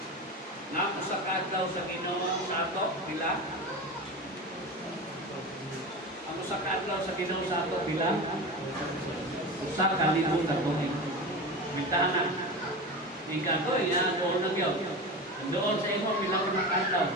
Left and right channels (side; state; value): both; normal; correlation 0.27